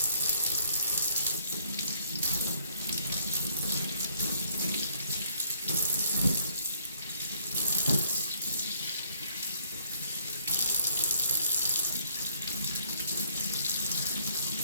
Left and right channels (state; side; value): inverted; both; correlation -0.64